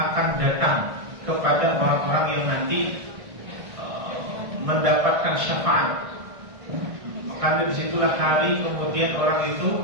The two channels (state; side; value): late; left; 1.6 ms